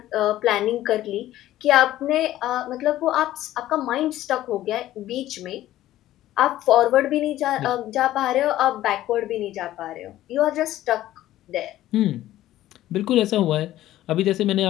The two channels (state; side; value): quieter; right; 14.2 dB